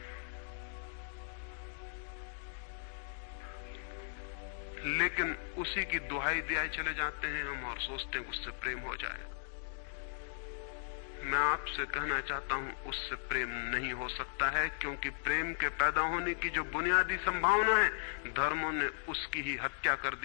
लेकिन उसी की दुहाई दिए चले जाते हैं हम और सोचते हैं उससे प्रेम हो जाएगा। मैं आपसे कहना चाहता हूं उससे प्रेम नहीं हो सकता है, क्योंकि प्रेम के पैदा होने की जो बुनियादी संभावना है, धर्मों ने उसकी ही हत्या कर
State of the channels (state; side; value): silent; right; digital silence